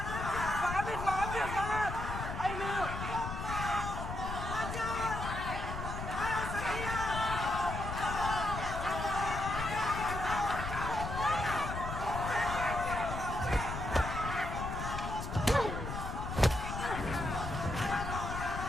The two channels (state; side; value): noise; left; rumble, 5 dB below the sound